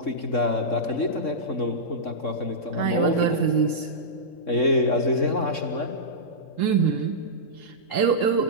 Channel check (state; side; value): late; right; 3.7 ms